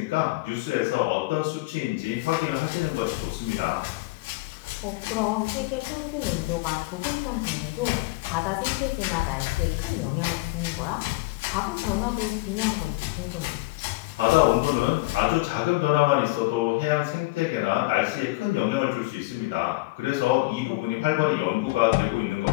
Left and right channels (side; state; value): right; quieter; 22.2 dB